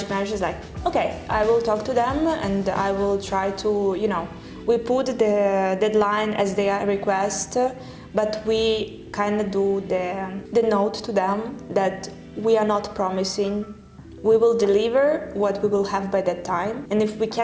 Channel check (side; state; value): both; identical; correlation 1.00